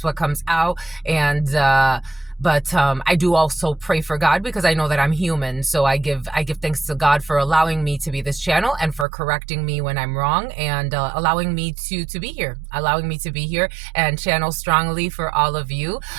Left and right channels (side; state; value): left; drops out; at 9.1 s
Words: what comes out. And but I do also pray for God, because I know that I'm human. So I give thanks to God for allowing me to be this channel and for correcting me when I'm wrong, and allowing me to be here, and channel strongly for all of you.